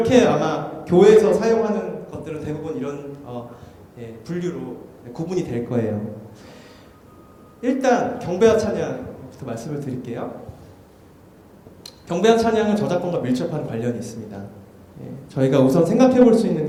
아마 교회에서 사용하는 것들은 대부분 이런 분류로 구분이 될 거예요. 일단 경배와 찬양부터 말씀을 드릴게요. 경배와 찬양은 저작권과 밀접한 관련이 있습니다. 저희가 우선 생각해 볼 수 있는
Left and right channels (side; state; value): both; identical; correlation 1.00